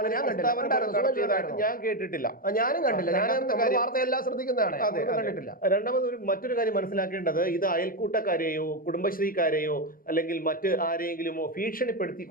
ഞാൻ കേട്ടിട്ടില്ല, ഞാനും കണ്ടില്ല. ഞാൻ വാർത്തയെല്ലാം ശ്രദ്ധിക്കുന്നതാണ്, കണ്ടിട്ടില്ല. രണ്ടാമത് മറ്റൊരു കാര്യം മനസ്സിലാക്കേണ്ടത്, ഇത് അയൽക്കൂട്ടക്കാരെയോ കുടുംബശ്രീക്കാരെയോ അല്ലെങ്കിൽ മറ്റ് ആരെയെങ്കിലുമോ ഭീഷണിപ്പെടുത്തി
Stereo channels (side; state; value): right; late; 0.41 ms